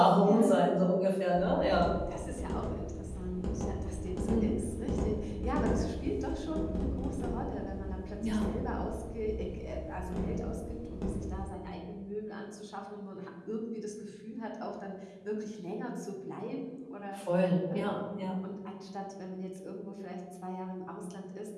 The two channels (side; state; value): both; identical; correlation 1.00